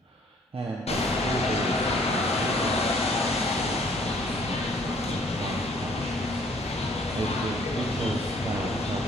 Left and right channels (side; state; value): both; normal; correlation 0.60